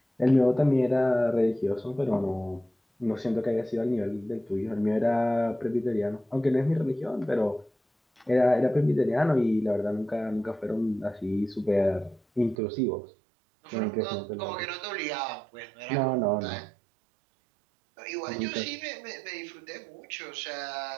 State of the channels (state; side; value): drops out; left; at 12.6 s